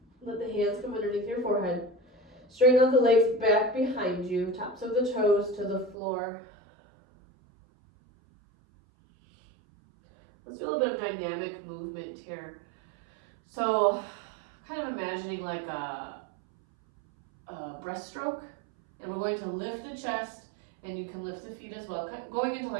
Let the hands come underneath your forehead. Straighten out the legs back behind you, tops of the toes to the floor. Let's do a little bit of dynamic movement here. So, kind of imagining like a breaststroke, and we're going to lift the chest, and you can lift the feet as well, going into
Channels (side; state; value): left; drops out; at 6.0 s